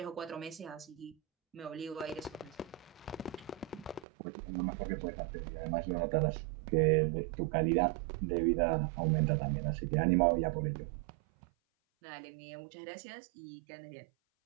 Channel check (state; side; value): drops out; left; at 4.0 s